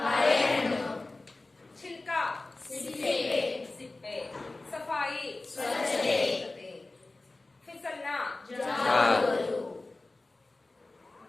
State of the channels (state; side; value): quieter; right; 3.1 dB